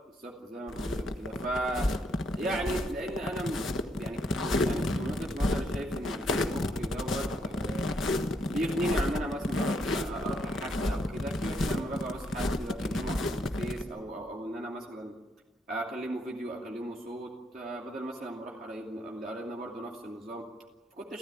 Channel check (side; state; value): both; normal; correlation 0.74